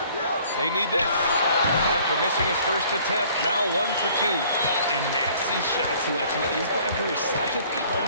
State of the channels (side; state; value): both; inverted; correlation -0.56